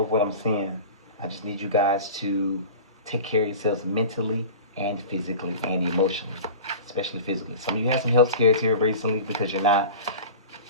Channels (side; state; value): both; inverted; correlation -0.36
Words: what I'm seeing. I just need you guys to take care of yourselves mentally and physically and emotionally, especially physically. Some of you had some health scares here recently because you're not